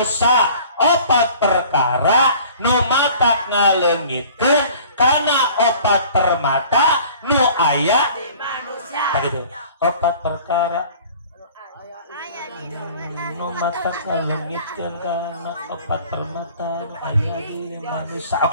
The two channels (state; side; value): inverted; both; correlation -0.48